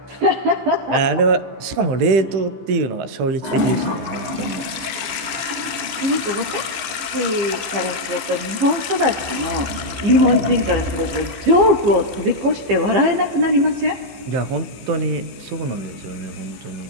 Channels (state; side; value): late; left; 14 ms